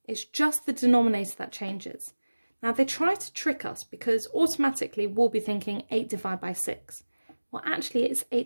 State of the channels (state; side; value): inverted; both; correlation -1.00